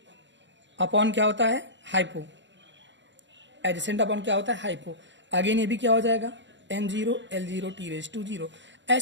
अपॉन क्या होता है? हाइपो। एडजेसेंट अपॉन क्या होता है? हाइपो। अगेन ये भी क्या हो जाएगा? m0, l0, t⁻0।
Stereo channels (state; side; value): late; left; 0.53 ms